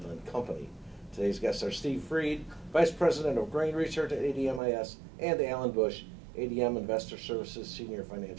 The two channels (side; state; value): left; drops out; at 4.6 s